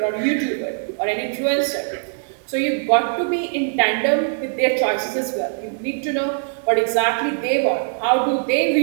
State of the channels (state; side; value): silent; left; 56 dB below the other